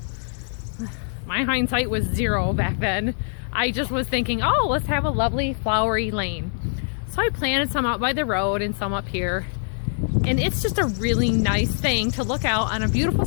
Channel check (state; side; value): silent; right; digital silence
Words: my hindsight was 0 back then. I just was thinking, oh, let's have a lovely flowery lane. So I planted some out by the road and some up here. And it's just a really nice thing to look out on a beautiful